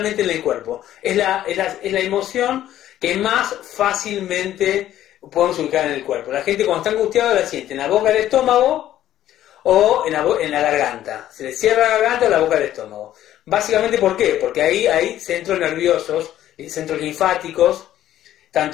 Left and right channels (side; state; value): right; quieter; 12.5 dB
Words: en el cuerpo, es la emoción que más fácilmente podemos ubicar en el cuerpo. La gente cuando está angustiada la siente en la boca del estómago o en la garganta. Se le cierra la garganta o la boca del estómago. Básicamente, ¿por qué? Porque ahí hay centros nerviosos, centros linfáticos,